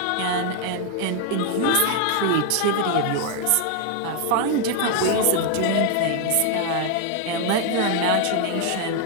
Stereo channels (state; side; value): different; both; correlation 0.00